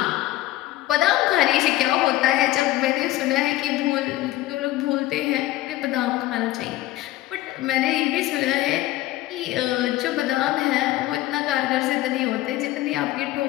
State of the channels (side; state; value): right; quieter; 16.0 dB